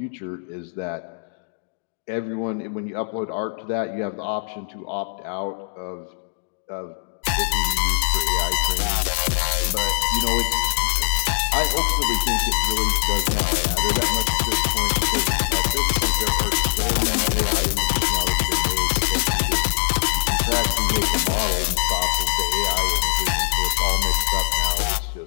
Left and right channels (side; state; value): right; silent; digital silence